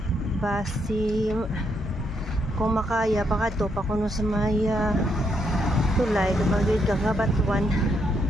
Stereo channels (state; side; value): normal; both; correlation 0.76